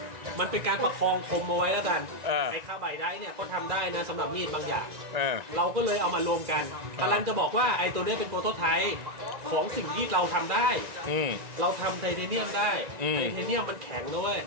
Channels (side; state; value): left; late; 1.9 ms